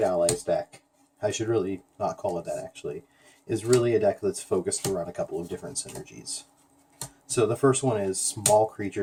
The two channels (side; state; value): both; identical; correlation 1.00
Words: allies deck, I should really not call it that actually, is really a deck that's focused around a couple of different synergies. So the first one is small